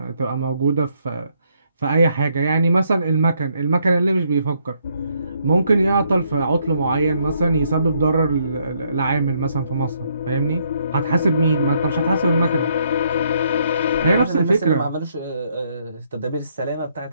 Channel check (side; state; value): both; inverted; correlation -0.72